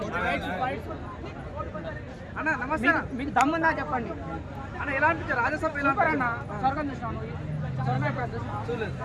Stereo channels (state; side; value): identical; both; correlation 1.00